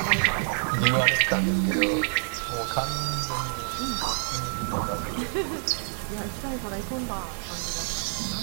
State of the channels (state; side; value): silent; left; digital silence